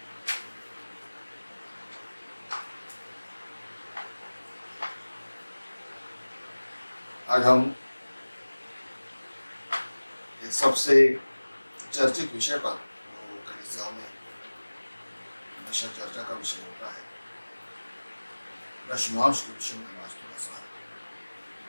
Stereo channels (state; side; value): inverted; both; correlation -1.00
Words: आज हम एक सबसे चर्चित विषय पर कलीसिया में हमेशा चर्चा का विषय होता है, दशमांश के विषय में हम आज थोड़ा सा